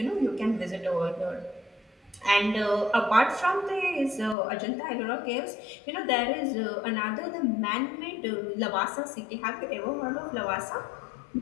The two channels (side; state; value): right; drops out; at 4.4 s